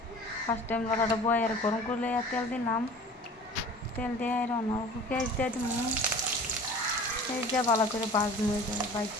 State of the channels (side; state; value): both; normal; correlation 0.42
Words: First time লড়াটা বয়ের গরম করলে তেল দিলাম। তেল দিয়ে অল্প পেঁয়াজ দিয়ে দিব। পেঁয়াজ দিয়ে ভালো করে ভাজবো।